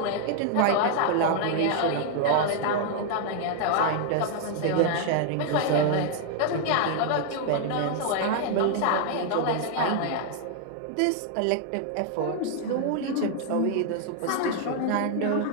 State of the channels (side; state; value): both; different; correlation 0.00